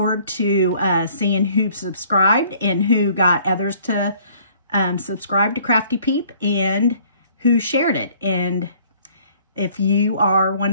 to seeing who subscribed and who got others to subscribe to Crafty Peep, and who shared it. And if you are one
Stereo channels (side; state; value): both; inverted; correlation -0.57